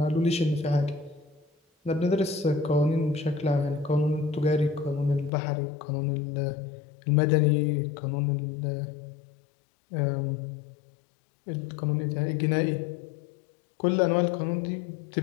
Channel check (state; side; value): drops out; right; at 5.3 s